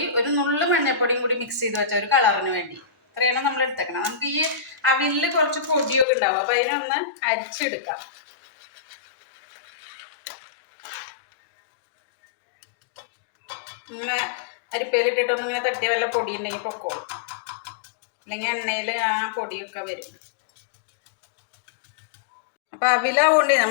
ഒരു നുള്ളു മഞ്ഞൾപ്പൊടിയും കൂടി മിക്സ് ചെയ്ത് വെച്ച ഒരു കളറിന് വേണ്ടി. ഇത്രയാണ് നമ്മൾ എടുത്തേക്കണം. നമുക്ക് ഈ അവിലിൽ കുറച്ച് പൊടിയൊക്കെ ഉണ്ടാവും, അപ്പൊ അതിനൊന്ന് അരിച്ചെടുക്കാം. ഇങ്ങനെ അരിപ്പയിലിട്ടിട്ടൊന്നും ഇങ്ങനെ തട്ടിയ വല്ല പൊടി ഉണ്ടെങ്കിൽ പൊക്കോളും, അല്ലെങ്കിൽ എണ്ണയിൽ ആ പൊടിയൊക്കെ വരും. അപ്പൊ അവിലാവുകൊണ്ട്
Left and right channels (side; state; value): right; drops out; at 6.1 s